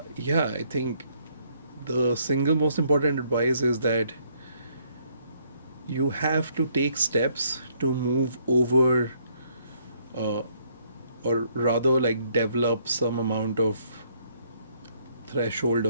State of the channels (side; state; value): both; inverted; correlation -0.68